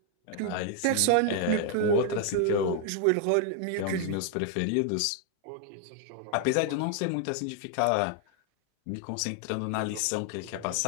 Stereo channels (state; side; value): different; both; correlation 0.00